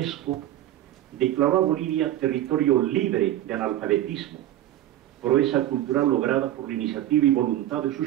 declaró a Bolivia territorio libre de analfabetismo, proeza cultural lograda por la iniciativa y voluntad de sus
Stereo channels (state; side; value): quieter; left; 13.2 dB